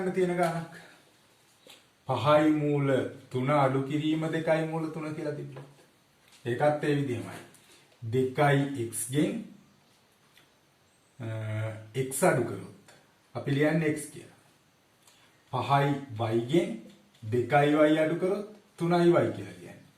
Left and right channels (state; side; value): identical; both; correlation 1.00